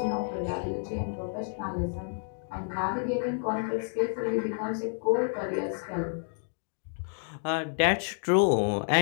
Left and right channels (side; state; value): right; silent; 55 dB below the other